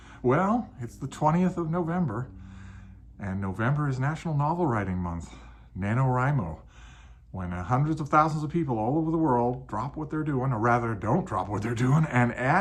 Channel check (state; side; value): identical; both; correlation 1.00